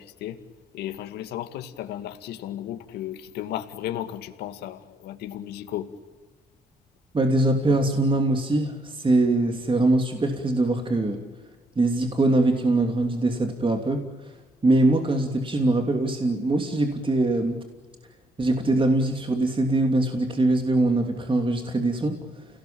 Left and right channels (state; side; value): normal; both; correlation 0.74